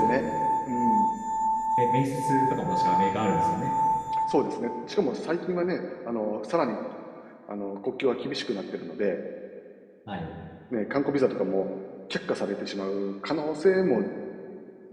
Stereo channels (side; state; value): both; identical; correlation 1.00